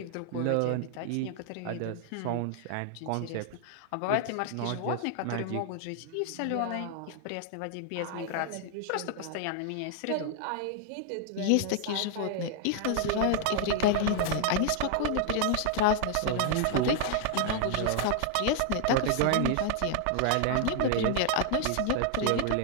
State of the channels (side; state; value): both; different; correlation 0.00